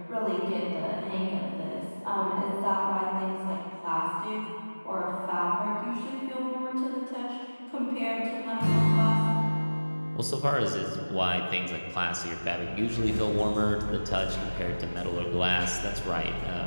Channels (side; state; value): both; inverted; correlation -1.00